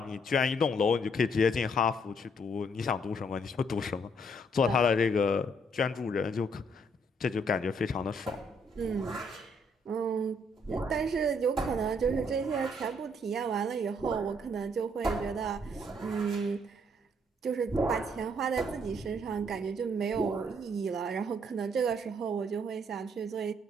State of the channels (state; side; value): normal; both; correlation 0.68